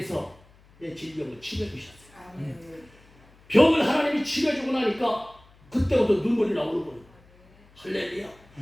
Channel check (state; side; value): noise; left; hum, 28 dB below the sound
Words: 내 질병을 치료해주셨어요. 아멘. 병을 하나님이 치료해주고 나니까 그때부터 눈물이 나오는 거예요. 할렐루야.